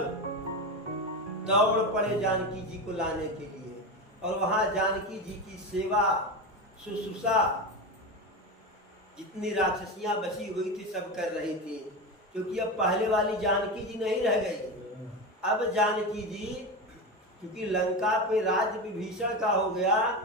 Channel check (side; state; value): both; normal; correlation 0.20